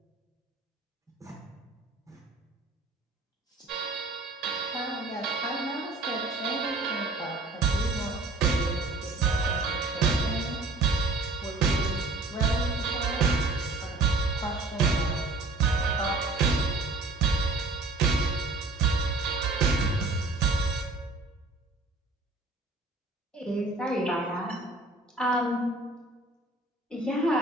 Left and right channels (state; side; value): quieter; left; 3.2 dB